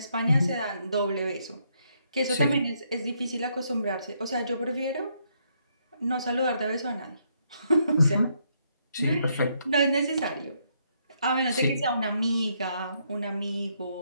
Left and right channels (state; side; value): inverted; both; correlation -0.74